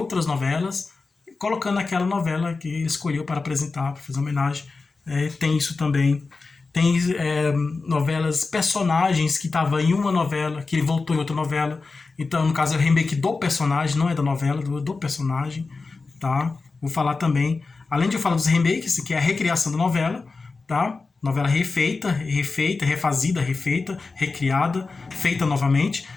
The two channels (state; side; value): quieter; right; 4.0 dB